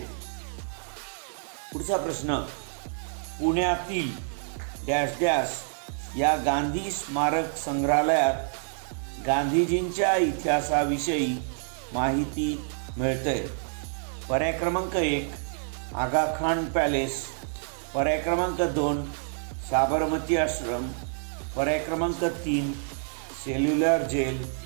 पुढचा प्रश्न, पुण्यातील डॅश डॅश या गांधी स्मारक संग्रहालयात गांधीजींच्या इतिहासाविषयी माहिती मिळते. पर्याय क्रमांक 1 आगा खान पॅलेस, पर्याय क्रमांक 2 साबरमती आश्रम, पर्याय क्रमांक 3 सेल्युलर जेल,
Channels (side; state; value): left; silent; digital silence